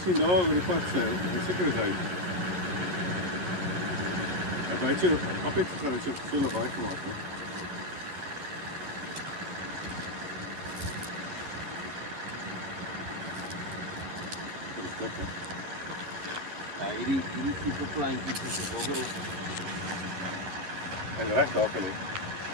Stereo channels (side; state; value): left; late; 11 ms